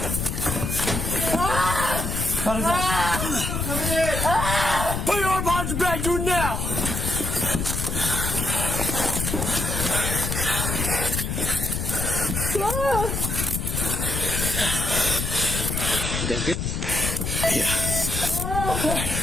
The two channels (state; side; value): noise; left; rumble, 2 dB below the sound